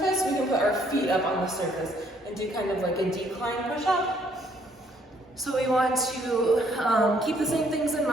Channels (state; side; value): normal; both; correlation 0.66